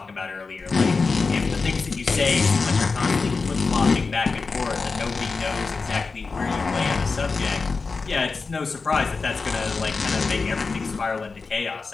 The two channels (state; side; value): quieter; right; 4.3 dB